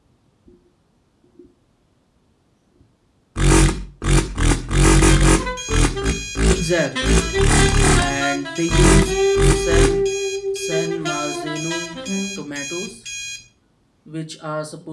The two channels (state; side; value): identical; both; correlation 1.00